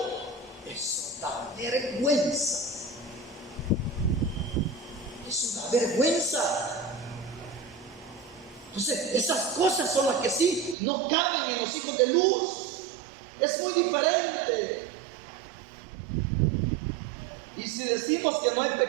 Eso da vergüenza. Eso da vergüenza. Entonces, esas cosas son las que sí no caben en los hijos de luz. Es muy diferente. Y si decimos que no hay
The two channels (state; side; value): drops out; left; at 10.8 s